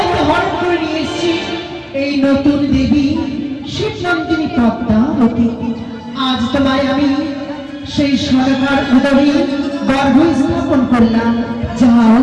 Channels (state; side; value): identical; both; correlation 1.00